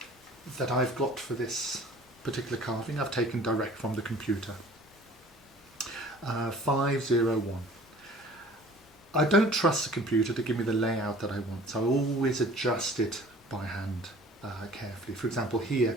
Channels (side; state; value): both; normal; correlation 0.49